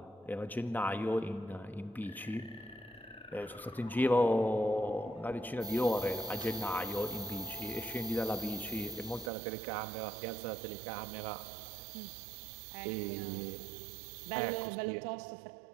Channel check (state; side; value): drops out; left; at 9.3 s